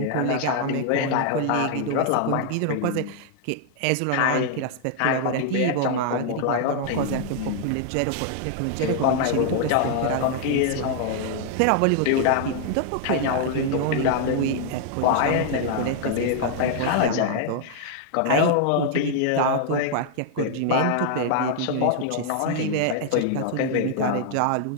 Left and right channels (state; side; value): different; both; correlation 0.00